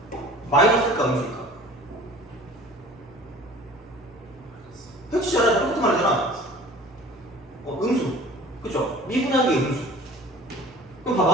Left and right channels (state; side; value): normal; both; correlation 0.46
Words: 마이너스일까 음수일까? 해치잖아. 똑같은 말 하잖아. 음수. 그쵸? 미분한 게 음수. 그럼